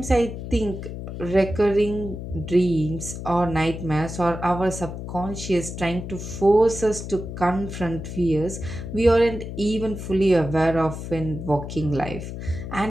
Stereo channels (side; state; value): left; noise; hum, 8 dB below the sound